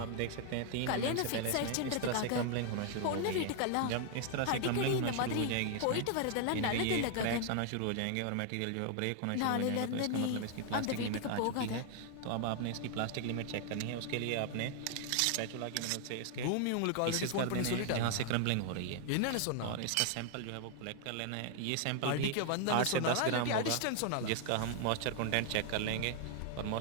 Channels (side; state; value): both; different; correlation 0.00